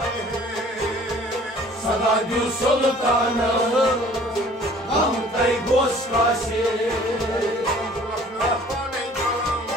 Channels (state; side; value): normal; both; correlation 0.52